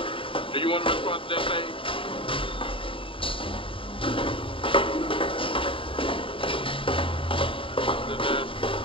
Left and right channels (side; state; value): right; late; 0.25 ms